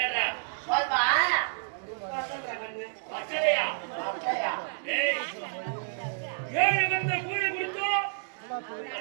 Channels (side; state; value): left; silent; digital silence